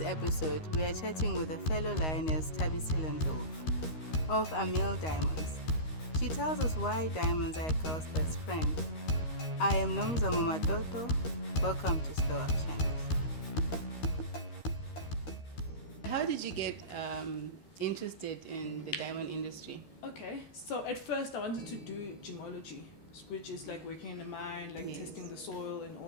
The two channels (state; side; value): late; right; 13 ms